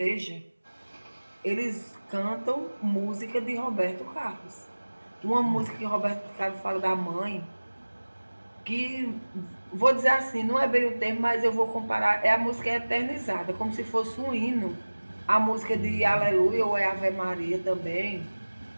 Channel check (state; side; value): inverted; both; correlation -1.00